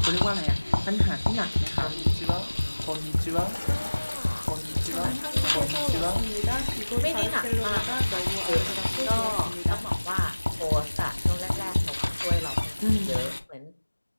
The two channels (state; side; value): inverted; both; correlation -1.00